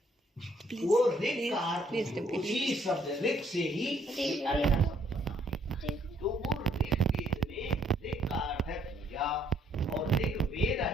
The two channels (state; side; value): normal; both; correlation 0.67